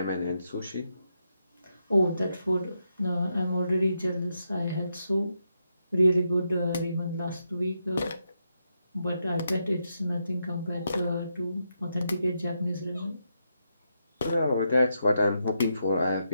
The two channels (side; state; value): both; inverted; correlation -0.83